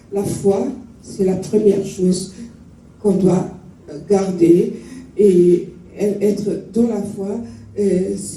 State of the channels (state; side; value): identical; both; correlation 1.00